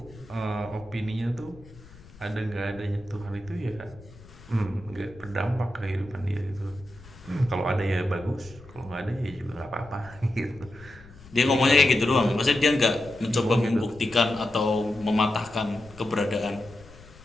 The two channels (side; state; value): left; noise; rumble, 21 dB below the sound